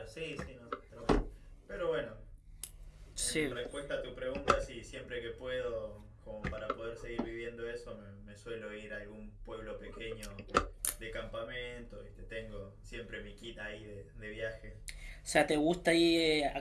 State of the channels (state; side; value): identical; both; correlation 1.00